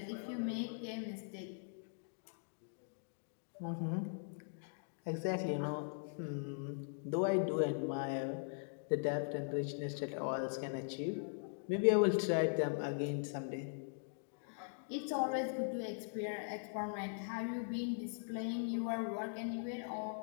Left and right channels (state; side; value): silent; right; digital silence